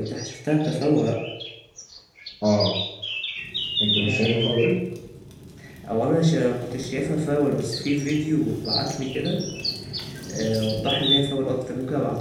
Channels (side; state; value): both; identical; correlation 1.00